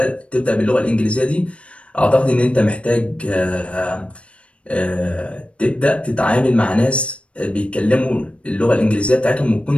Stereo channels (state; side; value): late; right; 0.061 ms